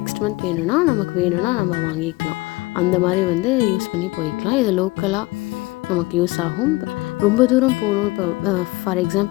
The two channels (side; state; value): right; quieter; 21.9 dB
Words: மந்த் நமக்கு வேணும்னா நம்ம வாங்கிக்கலாம். அந்த மாதிரி வந்து யூஸ் பண்ணி போய்க்கலாம். இது லோக்கலாக நமக்கு யூஸ் ஆகும். ரொம்ப தூரம் போகணும், இப்போ ஃபார்